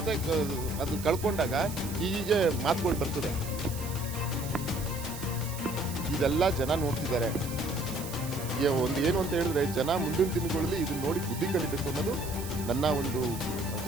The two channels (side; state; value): right; noise; hiss, 11 dB below the sound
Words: ಅದು ಕಳ್ಕೊಂಡಾಗ ಹೀಗೆ ಮಾತುಗಳು ಬರ್ತದೆ. ಇದೆಲ್ಲ ಜನ ನೋಡ್ತಿದ್ದಾರೆ. ಒಂದು ಏನು ಅಂತ ಹೇಳಿದ್ರೆ, ಜನ ಮುಂದಿನ ದಿನಗಳಲ್ಲಿ ಇದನ್ನ ನೋಡಿ ಬುದ್ಧಿ ಕಲಿಬೇಕು ಅನ್ನೋದು ನನ್ನ ಒಂದು